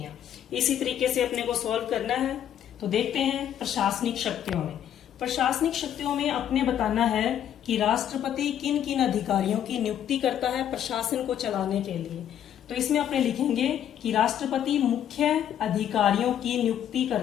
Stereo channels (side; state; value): right; quieter; 10.1 dB